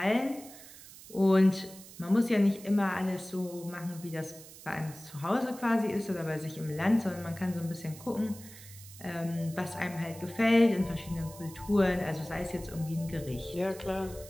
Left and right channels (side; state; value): right; noise; hiss, 18 dB below the sound